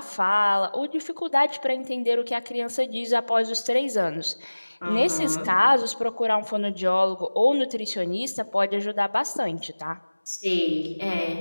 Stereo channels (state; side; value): inverted; both; correlation -1.00